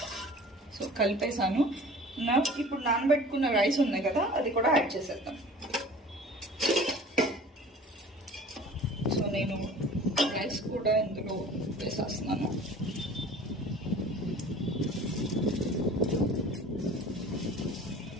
సో కలిపేసాను. ఇప్పుడు నానబెట్టుకున్న రైస్ ఉన్నాయి కదా, అది కూడా యాడ్ చేసేద్దాం. సో నేను రైస్ కూడా ఇందులో వేసేస్తున్నాను.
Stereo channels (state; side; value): normal; both; correlation 0.44